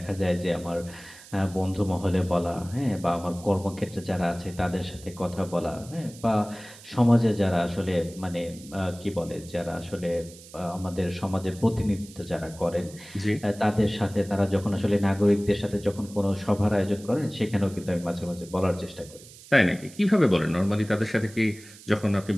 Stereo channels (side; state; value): right; noise; hiss, 20 dB below the sound